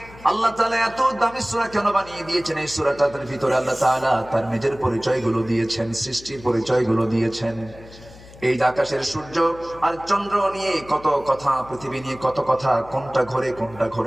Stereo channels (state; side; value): noise; left; hum, 20 dB below the sound